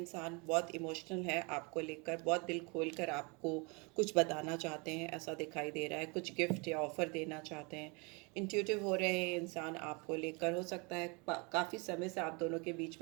बहुत इमोशनल है आपको लेकर, बहुत दिल खोल कर आपको कुछ बताना चाहते हैं, ऐसा दिखाई दे रहा है। कुछ गिफ्ट या ऑफर देना चाहते हैं। इंट्यूटिव हो रहे हैं इंसान आपको लेकर। हो सकता है काफ़ी समय से आप दोनों के बीच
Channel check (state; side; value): quieter; left; 30.5 dB